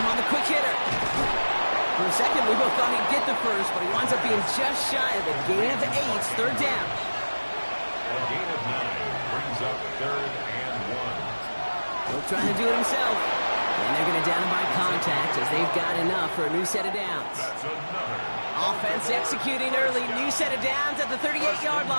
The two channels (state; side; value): inverted; both; correlation -1.00